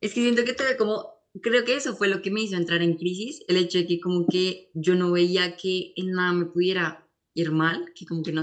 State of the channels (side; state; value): both; identical; correlation 1.00